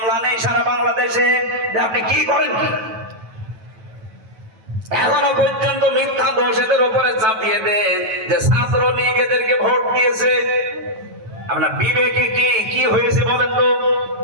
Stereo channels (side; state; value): left; late; 9.2 ms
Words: নেই সারা বাংলাদেশে। আপনি কি করেন কি? এখনো পর্যন্ত মিথ্যা দোষ এদের উপরে চাপিয়ে দেন যে ছাত্রলীগ এদেরকে ভোট দিয়েছে। আপনার বিবেকে কি হয়েছে বলেন তো?